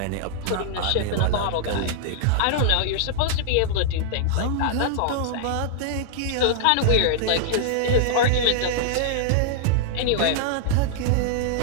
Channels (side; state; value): both; different; correlation -0.01